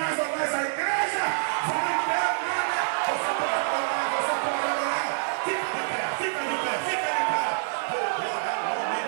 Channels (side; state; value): left; silent; 56 dB below the other